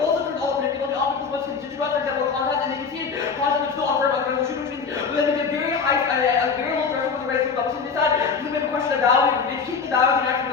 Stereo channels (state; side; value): quieter; right; 5.5 dB